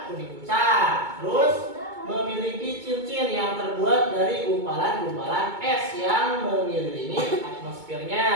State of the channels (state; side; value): late; left; 2.2 ms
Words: kuning pucat, terus memiliki cincin yang terbuat dari gumpalan-gumpalan es yang mengelilingi